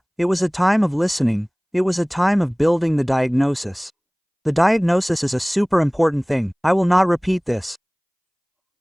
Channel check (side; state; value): both; identical; correlation 1.00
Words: It was a time of listening, it was a time of building the diagnosis. The diagnosis is a super important thing, I will not repeat this.